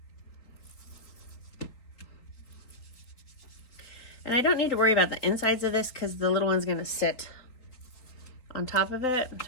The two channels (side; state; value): right; late; 3.9 ms